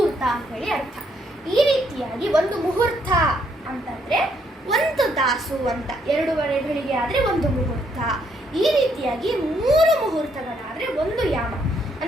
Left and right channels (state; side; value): normal; both; correlation 0.72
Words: ಅಂತ ಹೇಳಿ ಅರ್ಥ. ಈ ರೀತಿಯಾಗಿ 1 ಮುಹೂರ್ತ ಅಂತಂದ್ರೆ ಒಂದು ತಾಸು ಅಂತ, 2:30 ಗಳಿಗೆ ಆದರೆ ಒಂದು ಮುಹೂರ್ತ. ಈ ರೀತಿಯಾಗಿ 3 ಮುಹೂರ್ತಗಳಾದರೆ ಒಂದು ಯಾಮ.